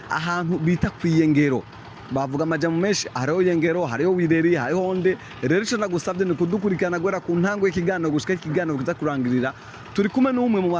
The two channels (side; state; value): both; identical; correlation 1.00